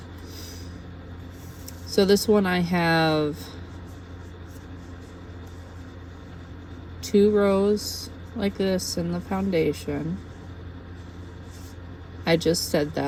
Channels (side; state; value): both; identical; correlation 1.00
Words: So this one I have 2 rows like this in the foundation. I just said